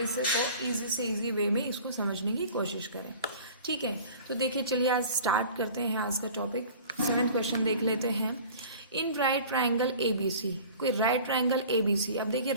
इसे तो ईजी से ईजी वे में इसको समझने की कोशिश करें, ठीक है। तो देखिए, चलिए आज स्टार्ट करते हैं आज का टॉपिक। 7th क्वेश्चन देख लेते हैं। In right triangle A B C, कोई right triangle A B C. अब देखिए,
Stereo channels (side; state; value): both; inverted; correlation -0.43